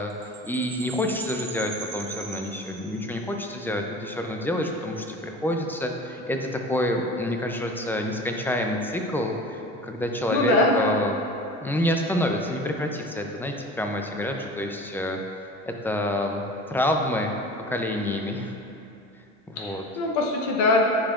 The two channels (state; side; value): normal; both; correlation 0.37